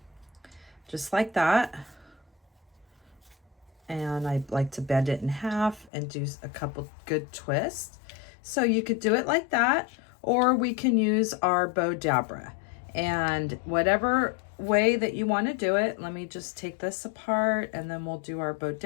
just like that. And I like to bend it in half and do a couple good twists. So you could do it like that, or we can use our bow dabra. And whatever way that you want to do it, let me just take this apart and then we'll do our bow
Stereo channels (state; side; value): drops out; right; at 5.9 s